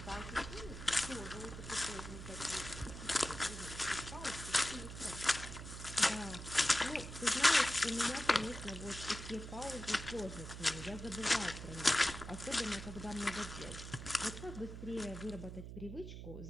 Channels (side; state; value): right; noise; hum, 9 dB below the sound